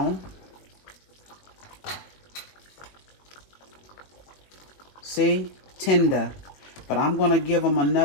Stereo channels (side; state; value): right; late; 21 ms